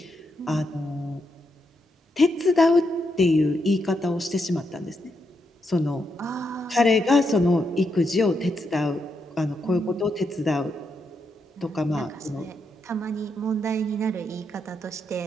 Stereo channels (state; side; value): normal; both; correlation 0.81